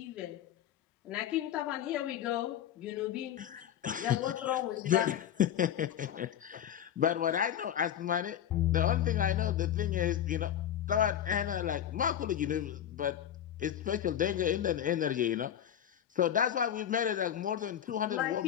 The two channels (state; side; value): quieter; right; 10.2 dB